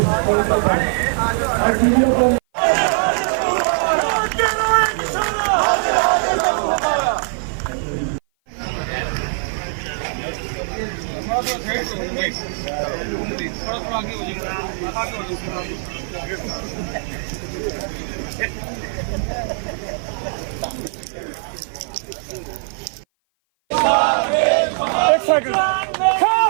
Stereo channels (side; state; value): left; silent; 56 dB below the other